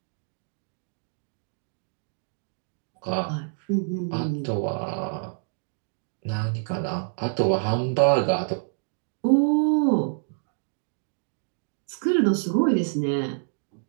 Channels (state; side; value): silent; left; digital silence